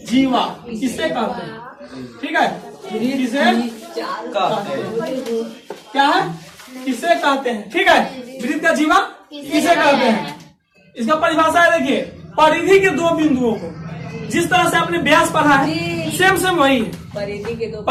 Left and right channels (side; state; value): both; identical; correlation 1.00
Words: जीवा किससे कहते हैं? ठीक है, किसे क्या है? किसे कहते हैं? ठीक है, वृत्त का जीवा किसे कहते हैं? इसका परिभाषा है, देखिए, परिधि के 2 बिंदुओं को, जिस तरह से आपने व्यास पढ़ा है सेम वही है।